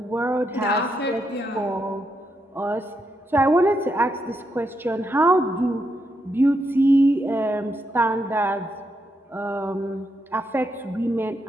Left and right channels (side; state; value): both; normal; correlation 0.81